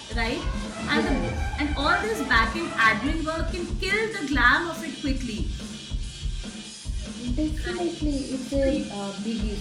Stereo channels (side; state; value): both; identical; correlation 1.00